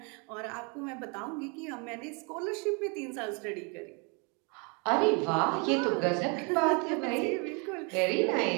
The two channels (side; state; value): left; quieter; 33.4 dB